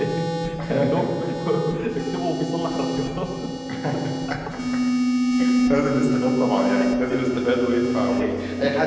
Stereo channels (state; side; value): identical; both; correlation 1.00